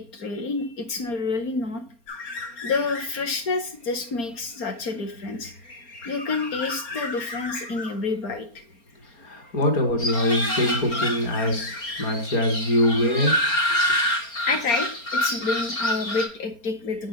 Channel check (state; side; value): late; right; 4.3 ms